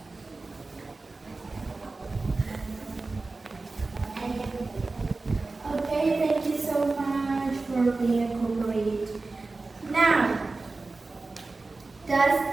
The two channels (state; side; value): quieter; left; 3.5 dB